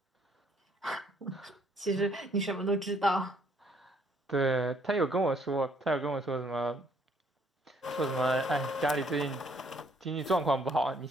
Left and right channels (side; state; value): both; normal; correlation 0.66